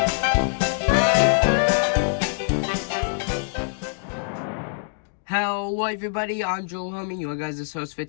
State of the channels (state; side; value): silent; right; digital silence